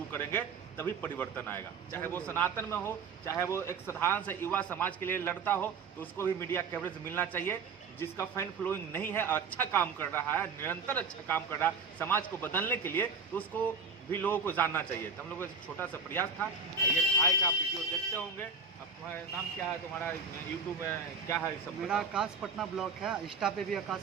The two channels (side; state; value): left; quieter; 4.8 dB